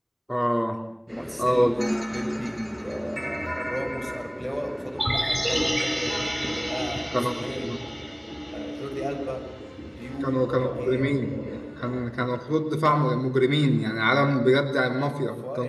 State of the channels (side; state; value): both; identical; correlation 1.00